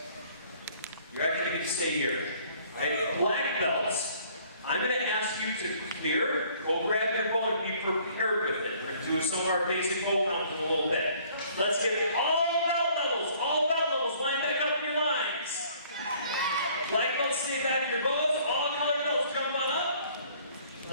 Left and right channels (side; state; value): both; inverted; correlation -0.58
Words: You're actually going to stay here. Right? Black belts. I'm going to ask you to clear. Go grab your bow and be prepared with it. We're going to do some of our basic bow counts in a little bit. Let's get all belt levels. Line back up in your lines. Black belts stay back in your bows. All color belts jump on up.